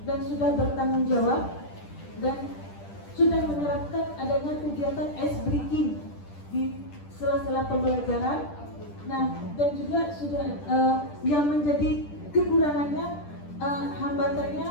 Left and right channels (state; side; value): late; right; 10 ms